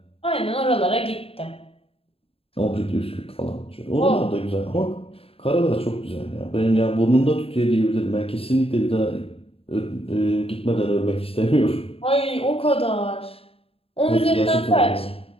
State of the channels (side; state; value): right; late; 0.28 ms